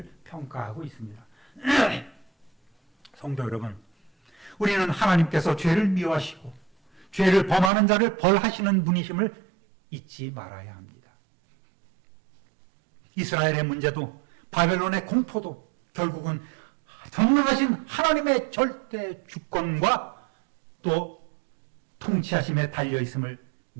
평가하고 있습니다. 성도 여러분, 우리는 하나님께서 죄를 미워하시고 죄를 범하는 자를 벌하시는 분이심을 잊지 말아야 합니다. 이스라엘의 문제도 바벨론의 공포도 결국은 전능하신 하나님의 절대 주권과 또 통치하심에 달려있음을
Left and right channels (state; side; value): drops out; left; at 7.7 s